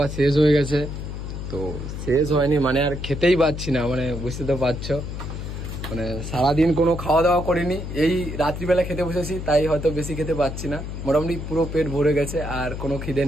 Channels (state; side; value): noise; left; hum, 7 dB below the sound